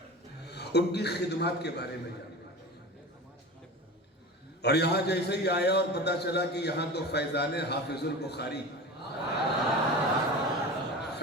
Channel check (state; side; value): normal; both; correlation 0.32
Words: ان کی خدمات کے بارے میں جانیں اور یہاں جیسے ہی آیا اور پتا چلا کہ یہاں تو فیضان حافظ البخاری